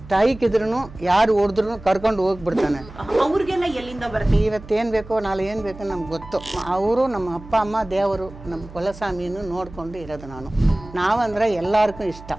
ತಾಯಿಕಿದ್ರು ಯಾರು ಹೊಡೆದ್ರು ಕರ್ಕೊಂಡು ಹೋಗ್ಬಿಡ್ತಾನೆ. ಅವ್ರಿಗೆಲ್ಲ ಎಲ್ಲಿಂದ ಬರುತ್ತೆ? ಇವತ್ತೇನು ಬೇಕೋ ನಾಳೆ ಏನು ಬೇಕೋ ನಮ್ಗೆ ಗೊತ್ತು. ಅವರು ನಮ್ಮ ಅಪ್ಪ ಅಮ್ಮ ದೇವರು ನಮ್ಮ ಕುಲಸ್ವಾಮಿಯನ್ನು ನೋಡ್ಕೊಂಡು ಇರೋದು ನಾನು. ನಾವಂದ್ರೆ ಎಲ್ಲರಿಗೂ ಇಷ್ಟ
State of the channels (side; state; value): right; noise; hum, 17 dB below the sound